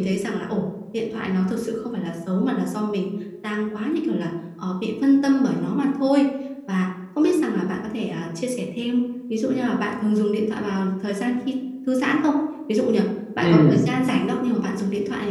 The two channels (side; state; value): both; identical; correlation 1.00